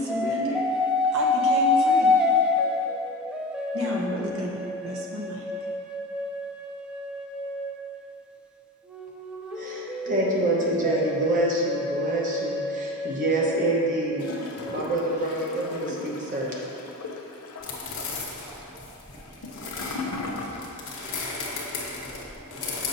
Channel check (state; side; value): normal; both; correlation 0.30